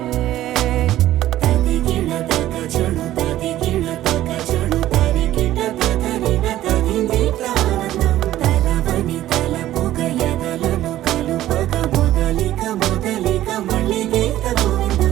తదిగిడ తగజను తదిగిడ తగజను తరిగిట తదరిన తదిదీత ఆనందం తలవని తలపుగ ఎదలను కలుపగ మొదలిక మొదలిక మళ్ళీగీత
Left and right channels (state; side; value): quieter; left; 13.9 dB